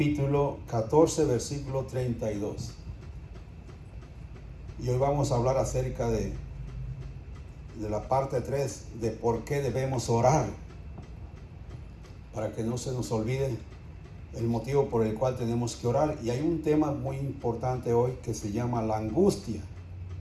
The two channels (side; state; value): both; identical; correlation 1.00